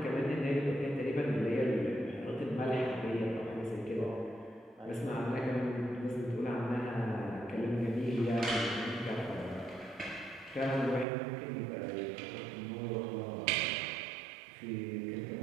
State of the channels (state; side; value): drops out; left; at 11.1 s